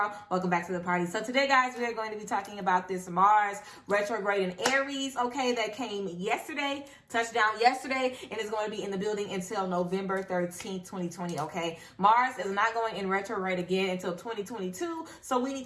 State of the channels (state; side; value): identical; both; correlation 1.00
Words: welcome back to the party. So today guys, we are going to be talking about this Mars retrograde in Aries, okay, that came yesterday, touched down yesterday, and is going to be in the building until November 13th, 2020, okay? Mars is not going in retrograde again until 2022, so we need